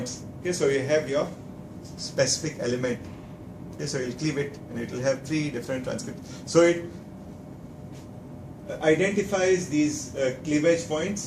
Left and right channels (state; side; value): identical; both; correlation 1.00